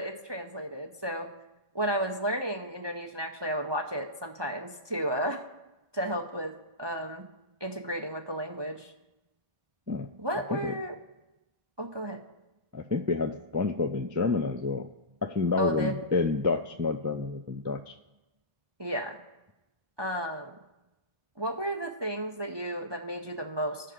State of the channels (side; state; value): left; late; 1.2 ms